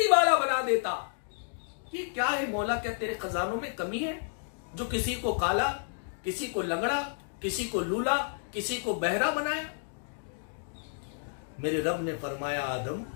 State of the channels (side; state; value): right; silent; digital silence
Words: वाला बना देता। ये क्या है मौला? क्या तेरे खजानों में कमी है जो किसी को काला, किसी को लंगड़ा, किसी को लूला, किसी को बहरा बनाया? मेरे रब ने फरमाया, आदम